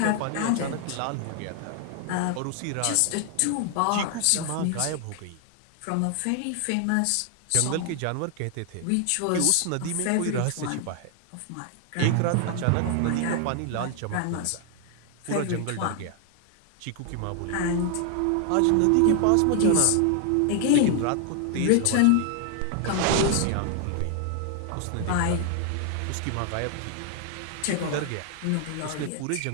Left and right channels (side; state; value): both; different; correlation 0.00